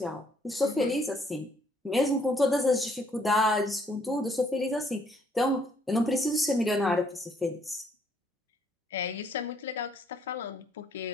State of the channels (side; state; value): both; normal; correlation 0.67